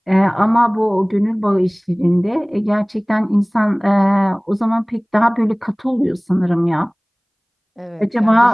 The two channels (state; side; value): identical; both; correlation 1.00